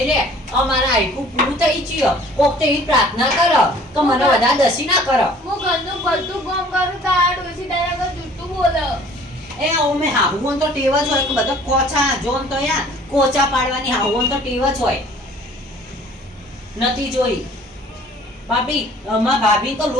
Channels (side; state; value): both; normal; correlation 0.52